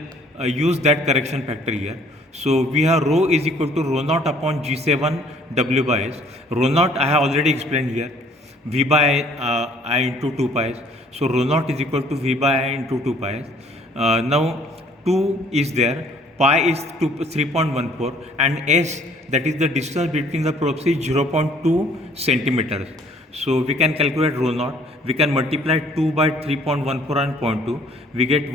use that correction factor here. So we have rho is equal to rho naught upon G7 W by S. Rho naught I have already explained here, V by I into 2 pi s. So rho naught is equal to V by I into 2 pi s. Now 2 is there, pi is 3.14, and S, that is the distance between the probes, is 0.2 centimeters. So we can calculate rho naught. We can multiply 2 by 3.14 and 0.2. We get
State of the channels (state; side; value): normal; both; correlation 0.58